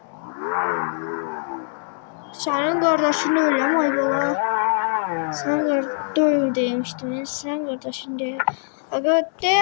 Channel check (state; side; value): silent; right; 64 dB below the other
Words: Senin kardeşin öyle mi ayıbala? Sen doyum demiştin. Sen kardeşin değil. Aga